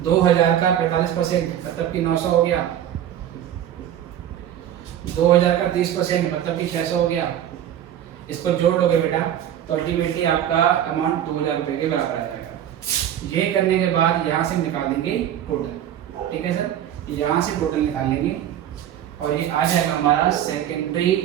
2,000 का 45% मतलब कि 900 हो गया। 2,000 का 30% मतलब कि 600 हो गया। इसको जोड़ लोगे बेटा तो अल्टीमेटली आपका अमाउंट 2,000 रुपए के बराबर आ जाएगा। ये करने के बाद यहाँ से निकाल देंगे टोटल, ठीक है सर, यहाँ से टोटल निकाल लेंगे और ये आ जाएगा हमारा सेकेंडरी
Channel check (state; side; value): quieter; left; 10.8 dB